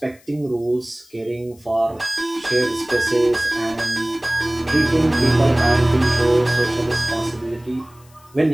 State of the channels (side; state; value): left; noise; hiss, 28 dB below the sound